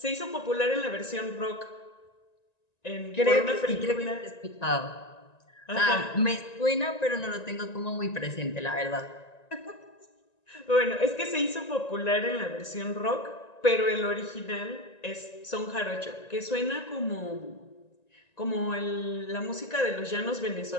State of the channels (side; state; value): right; late; 1.9 ms